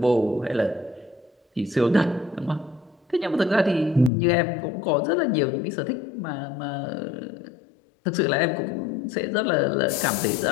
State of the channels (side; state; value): right; drops out; at 4.1 s